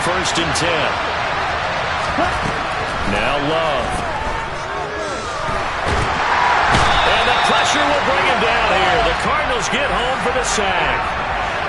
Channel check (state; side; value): identical; both; correlation 1.00